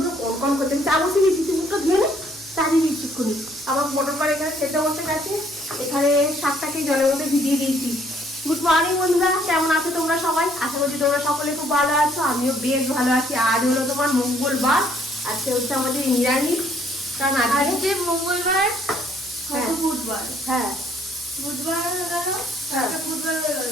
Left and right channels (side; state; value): right; noise; hum, 27 dB below the sound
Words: কনকন করছে। চা বসে গেছি, তুই মুখটা ধুয়ে নে, চা দিয়ে দিচ্ছিক্ষুনি। আমার মোটর করে এখানে সেদ্ধ বসে গেছে, এখানে শাকটাকে জলের মধ্যে ভিজিয়ে দিয়েছি। গুড মর্নিং বন্ধুরা, কেমন আছো তোমরা সবাই? আশা করছি তোমরা সকলে খুব ভালো আছো, আমিও বেশ ভালো আছি। আজ হলো তোমার মঙ্গলবার, আজকে হচ্ছে আমাদের নিরামিষ, কারণ আজকে মঙ্গলবার, বুধবার, হ্যাঁ বুধবার হয়ে গেল, বুধবার হয়ে গেল,